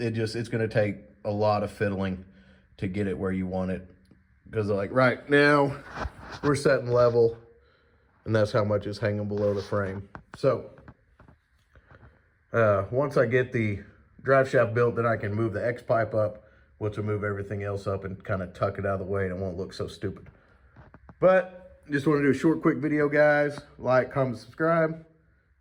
going to take a lot of fiddling to get it where you want it. Because, like, right now, we're setting level, and that's how much is hanging below the frame. So, once I get the drive shaft built, then I can move the X-pipe up, which will move everything else up and kind of tuck it out of the way, and it won't look so stupid. But, just want to do a short, quick video, guys. Like, comment, subscribe.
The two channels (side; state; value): both; identical; correlation 1.00